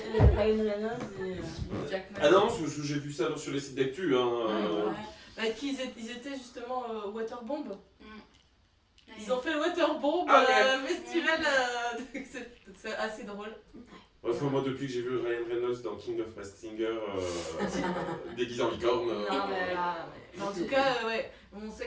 Reynolds et Jackman. Ah non, parce que j'ai vu ça sur les sites d'actu. Hein. Ouais. Bah, qu'ils étaient justement Waterbomb. Ils ont fait le Waterbomb Ah ouais. festival, c'est assez drôle. Enfin, moi, depuis que j'ai vu Ryan Reynolds dans King of Masked Singer déguisé en licorne. Mais en tout cas, ouais, on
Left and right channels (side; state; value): both; identical; correlation 1.00